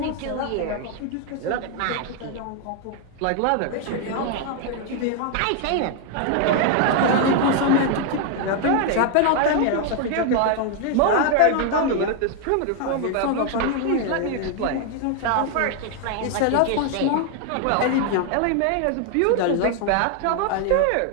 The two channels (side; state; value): both; different; correlation 0.00